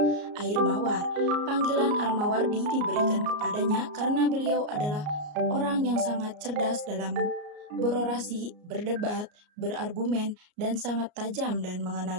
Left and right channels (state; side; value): late; left; 34 ms